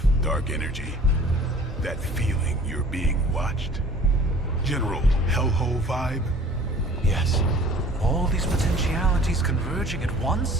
Dark energy. That feeling you're being watched. General hellhole vibe. Yes. All these potentialities converging at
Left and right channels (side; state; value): both; normal; correlation 0.48